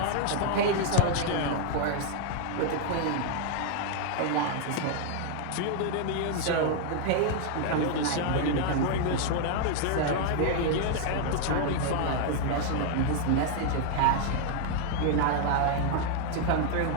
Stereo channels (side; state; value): both; different; correlation 0.00